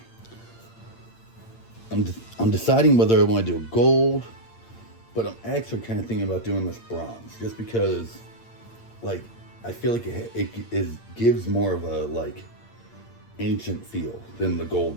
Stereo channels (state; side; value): late; right; 8.7 ms